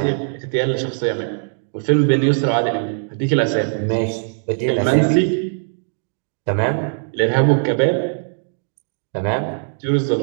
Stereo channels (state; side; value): silent; left; digital silence